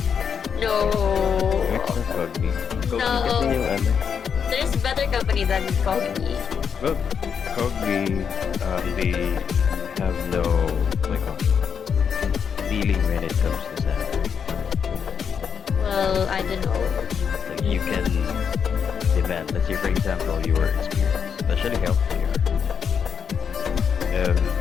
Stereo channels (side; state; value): right; quieter; 7.0 dB